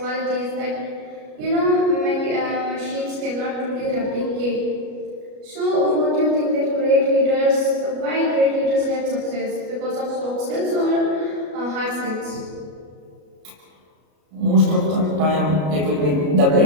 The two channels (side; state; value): left; late; 33 ms